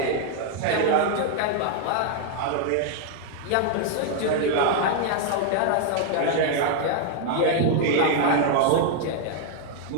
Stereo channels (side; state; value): both; different; correlation 0.00